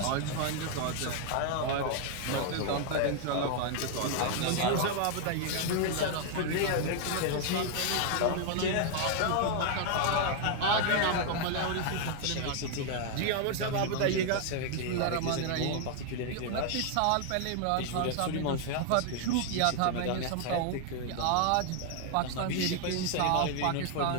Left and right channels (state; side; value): different; both; correlation 0.00